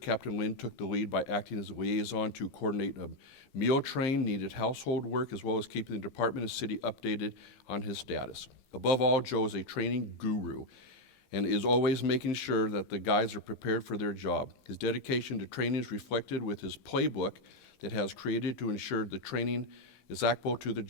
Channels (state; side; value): late; right; 15 ms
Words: Lynn took the lead by acting as a liaison to coordinate a meal train, needed household work, as well as keeping the department and city updated on his status. Above all, Joe is a training guru and is always making sure that the guys are prepared for their job. His dedication to training is reflected with his playbook that has created to ensure the training is applicable to the